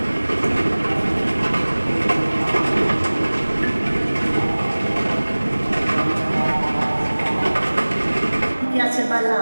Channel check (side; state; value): both; inverted; correlation -1.00